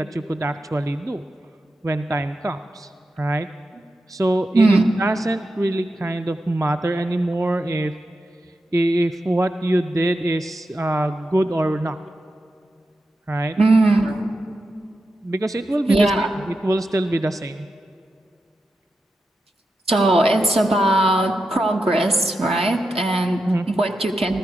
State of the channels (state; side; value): normal; both; correlation 0.88